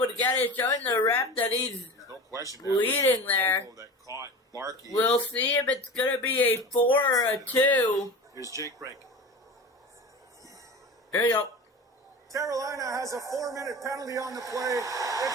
to get it, showing the ref that he's no question leading there. That caught Barkey. We'll see if it's going to be a 4 or a 2. Here's Jake Brink. Here you go. Carolina has a 4-minute penalty on the play.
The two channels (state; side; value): normal; both; correlation 0.32